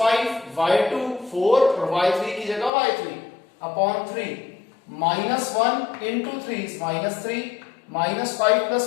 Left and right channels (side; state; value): right; drops out; at 2.7 s